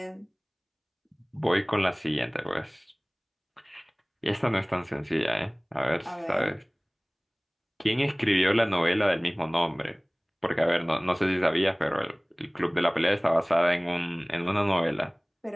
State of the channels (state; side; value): identical; both; correlation 1.00